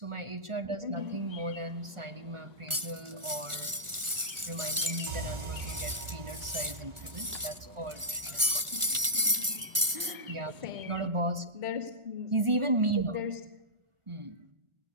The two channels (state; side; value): late; left; 1.4 ms